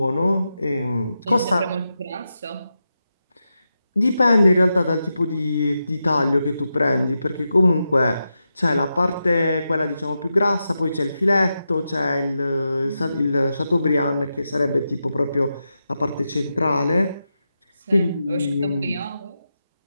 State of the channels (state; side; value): inverted; both; correlation -0.88